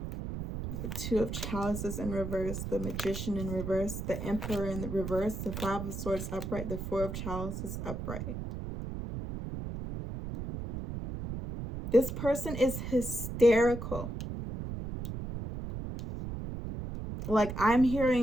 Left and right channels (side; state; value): right; noise; rumble, 6 dB below the sound